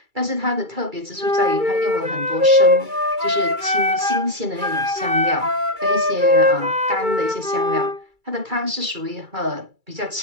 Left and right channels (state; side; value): late; left; 2.3 ms